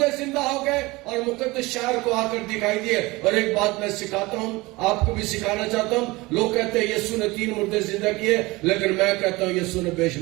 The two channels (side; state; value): left; quieter; 21.9 dB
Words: زندہ ہو گئے اور مقدس شہر کو آ کر دکھائی دیے. اور ایک بات میں سکھاتا ہوں، آپ کو بھی سکھانا چاہتا ہوں. لوگ کہتے ہیں یسوع نے 3 مردے زندہ کیے، لیکن میں کہتا ہوں یسوع نے بے